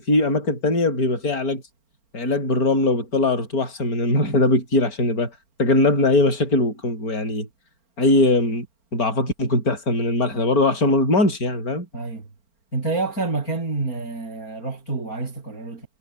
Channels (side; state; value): right; late; 4.4 ms